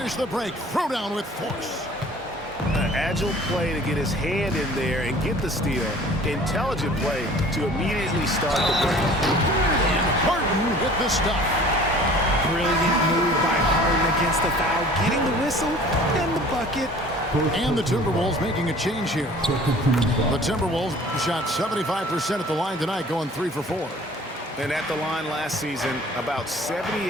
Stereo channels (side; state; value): both; normal; correlation 0.48